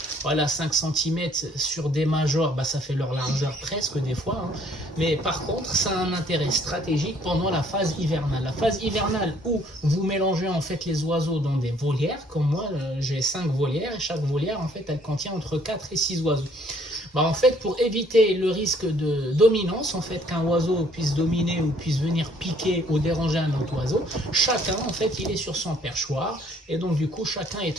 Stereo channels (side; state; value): both; normal; correlation 0.62